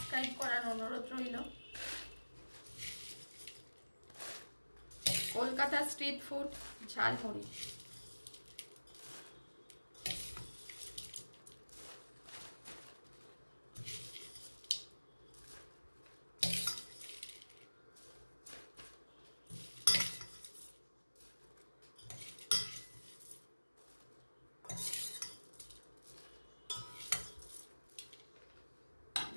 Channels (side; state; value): both; inverted; correlation -1.00